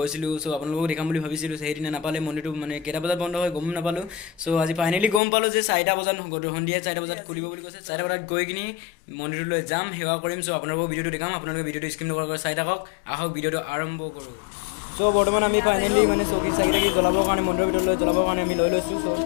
So আপোনালোকক দেখাম বুলি ভাবিছিলো. হেদিনা নাপালে মন্দিৰটো মানে কেইটা বজাত বন্ধ হয় গম নাপালো. So আজি ফাইনালি গম পালো যে 4টা বজাত সন্ধিয়া 4টা বজাত খুলিব বুলি কৈছে. 4টা বজাত গৈ কিনি মন্দিৰলৈ যাম, হেৱা কৰিম. So আপোনালোকক ভিডিঅ'টো দেখাম, আপোনালোকে ভিডিঅ'টো স্কিপ নকৰাকৈ চাই থাকক. আহক ভিডিঅ'টো আৰম্ভ কৰোঁ. So বৰ্তমান আমি ফাইনালি মানে চকী চাকি জ্বলাবৰ কাৰণে মন্দিৰৰ ভিতৰলৈ জ্বলাবৰ কাৰণে আমি লৈ লৈছোঁ. So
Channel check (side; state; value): right; drops out; at 5.2 s